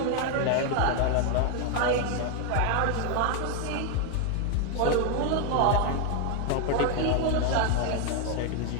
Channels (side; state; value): both; different; correlation 0.01